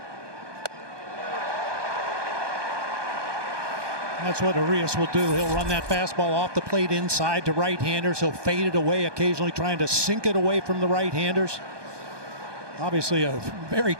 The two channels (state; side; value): late; left; 1.2 ms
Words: That's what Urias will do. He'll run that fastball off the plate inside to right-handers. He'll fade it away, occasionally trying to sink it away from the right-handers. Obviously a very